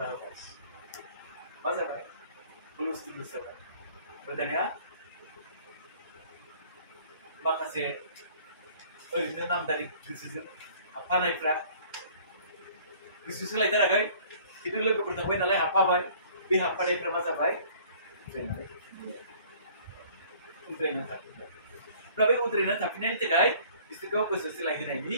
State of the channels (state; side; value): inverted; both; correlation -0.53